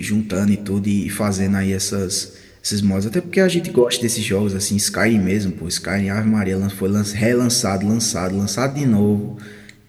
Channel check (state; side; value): identical; both; correlation 1.00